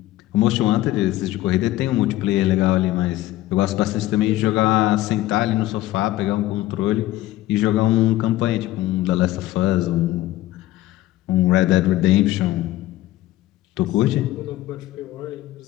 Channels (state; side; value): quieter; right; 15.7 dB